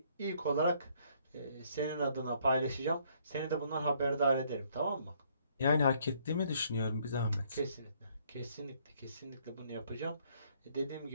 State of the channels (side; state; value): both; inverted; correlation -0.66